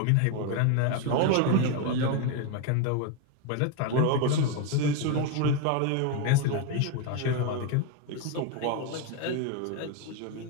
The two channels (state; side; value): different; both; correlation 0.02